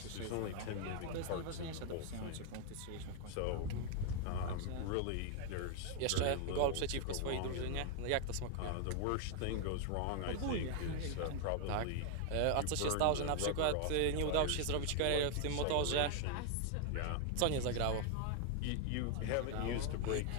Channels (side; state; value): both; different; correlation 0.00